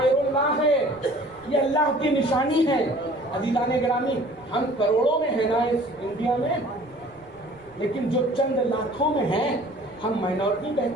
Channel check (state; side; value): noise; right; rumble, 27 dB below the sound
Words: اللہ ہے، یہ اللہ کی نشانی ہے۔ عزیزان گرامی، ہم کروڑوں میں ہیں نا اس انڈیا میں، لیکن جو چند لاکھوں میں ہیں، ہم مائنورٹی